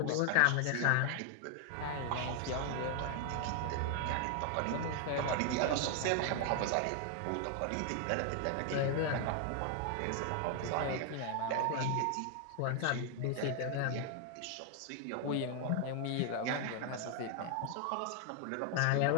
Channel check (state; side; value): different; both; correlation 0.00